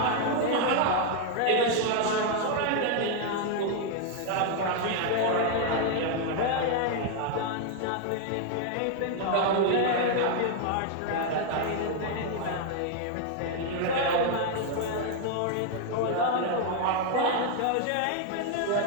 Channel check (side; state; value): both; different; correlation 0.00